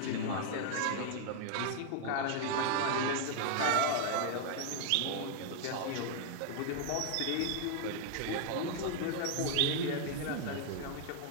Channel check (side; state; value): both; different; correlation 0.00